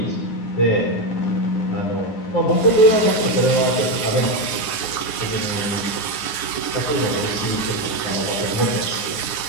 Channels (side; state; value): right; late; 9.8 ms